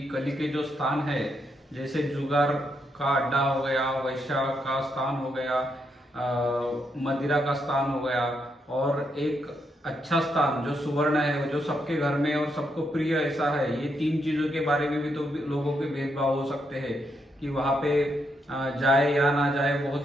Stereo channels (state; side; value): normal; both; correlation 0.79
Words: कली के जो स्थान है, जैसे जुगार का अड्डा हो गया, वैश्या का स्थान हो गया, मदिरा का स्थान हो गया, और एक अच्छा स्थान जो सुवर्ण है, जो सबके घर में और सबको प्रिय ऐसा है। ये 3 चीजों के बारे में भी तो लोगों के भेदभाव हो सकते हैं कि वहां पे जाए या ना जाए,